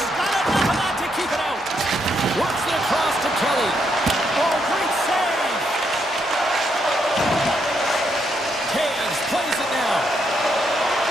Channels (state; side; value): normal; both; correlation 0.77